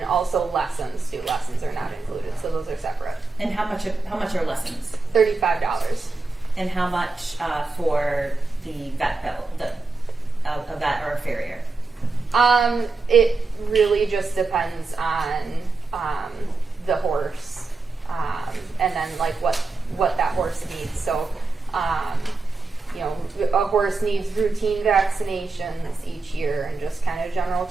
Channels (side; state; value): left; quieter; 3.7 dB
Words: also lessons. Student lessons are not included, so those are separate. And how much are lessons? $35. And how much for the vet bill, a vet or a farrier? It really just depends on the horse, and then like what that horse needs. So, a horse needs routine vaccinations each year and just kind of general